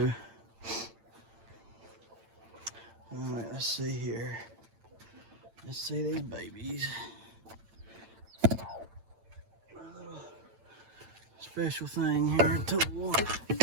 Alright, let's see here. Let's see these babies. A little special thing here, tool.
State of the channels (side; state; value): left; late; 8.9 ms